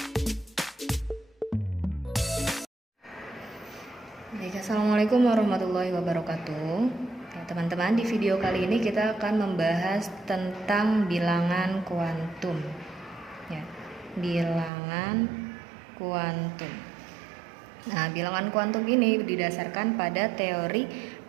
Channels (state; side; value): drops out; left; at 14.7 s